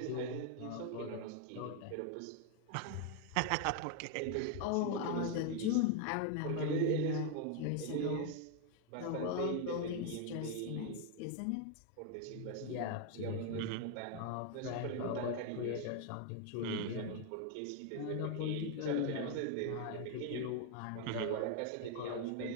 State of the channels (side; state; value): both; different; correlation 0.01